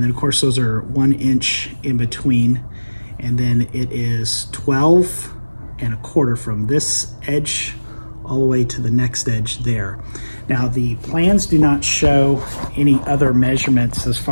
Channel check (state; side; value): inverted; both; correlation -1.00